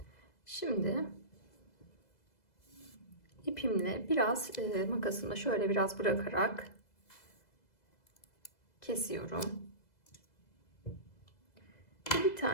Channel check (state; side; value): late; right; 2.0 ms